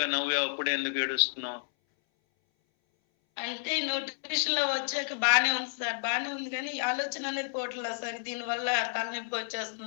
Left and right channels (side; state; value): right; silent; 57 dB below the other